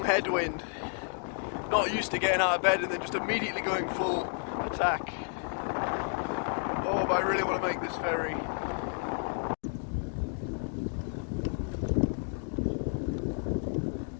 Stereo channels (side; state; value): right; silent; 57 dB below the other